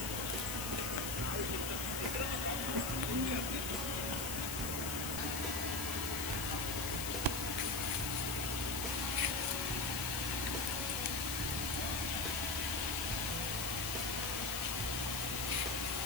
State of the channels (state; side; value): noise; left; hiss, 4 dB below the sound